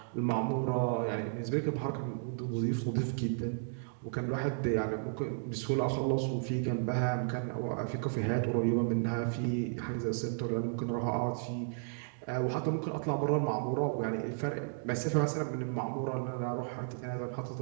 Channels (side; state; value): left; silent; digital silence